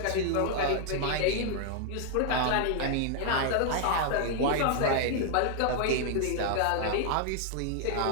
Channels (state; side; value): different; both; correlation 0.00